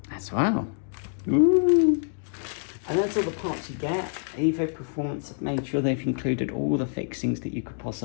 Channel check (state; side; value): silent; right; digital silence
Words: As well. Ooh. And that's all the parts you get. Evo Performance have made sure they've included all the fixings that you could